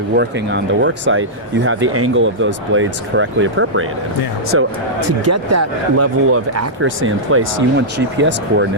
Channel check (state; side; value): normal; both; correlation -0.11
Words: working on the work site, you have the angle of those blades correctly appropriated. Yeah. So to get that level of accuracy in place, you want GPS